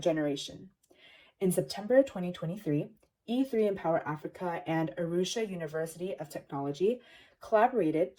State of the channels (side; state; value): both; identical; correlation 1.00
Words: generation. In September 2023, E3Empower Africa and Arusha University of Technology collaborated